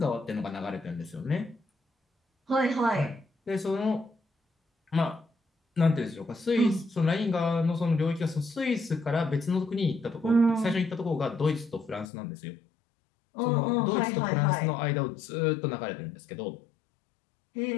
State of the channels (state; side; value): drops out; right; at 12.1 s